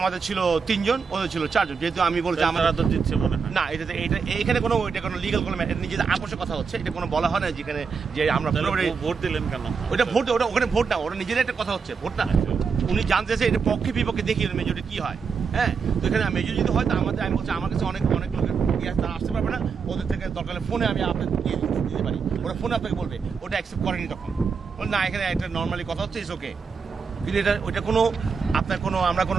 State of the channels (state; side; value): quieter; left; 5.6 dB